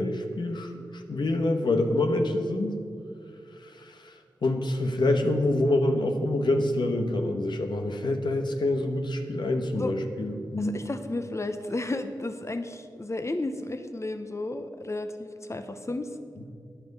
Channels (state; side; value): normal; both; correlation 0.86